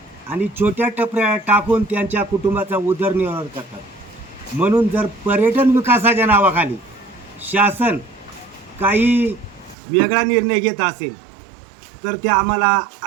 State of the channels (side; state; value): left; drops out; at 9.8 s